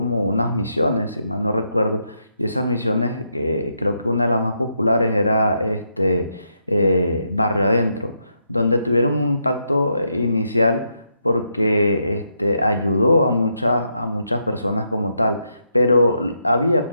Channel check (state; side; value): inverted; both; correlation -0.79